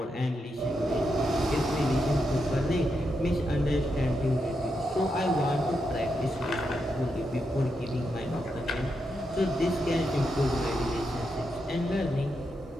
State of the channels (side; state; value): both; normal; correlation 0.84